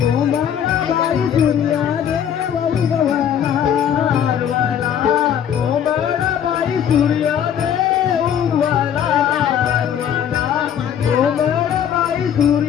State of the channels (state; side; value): quieter; right; 9.1 dB